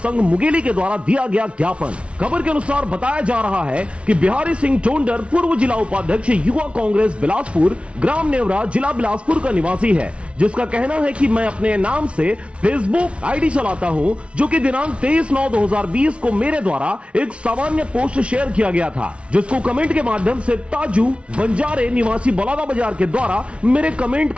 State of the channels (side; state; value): left; late; 0.060 ms